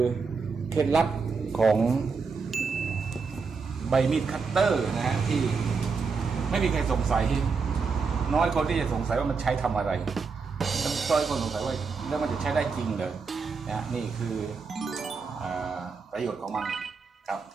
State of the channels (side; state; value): left; quieter; 5.0 dB